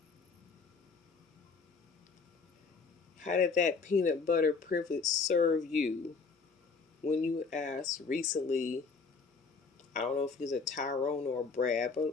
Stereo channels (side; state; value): right; quieter; 4.7 dB